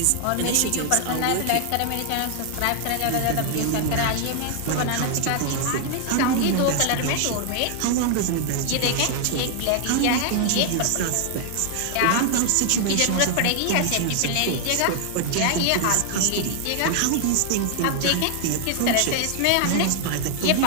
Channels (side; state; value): both; different; correlation 0.00